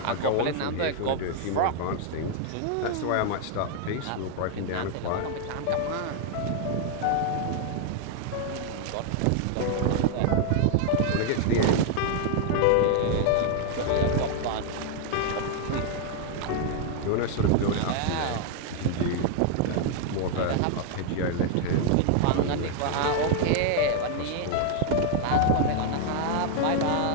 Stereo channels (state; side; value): different; both; correlation 0.00